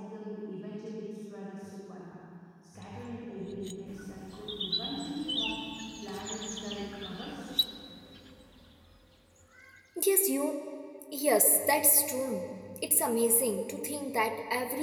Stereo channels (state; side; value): identical; both; correlation 1.00